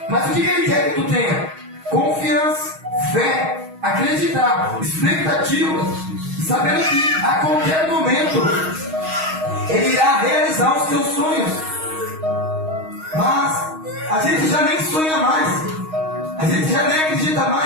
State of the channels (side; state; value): left; late; 6.3 ms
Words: Mas o que Ele quer que tu tenha? Confiança, fé, acreditar, expectativa, sabendo que a qualquer momento Ele irá realizar os teus sonhos. Mas a gente já nem sonha mais, a gente já nem acredita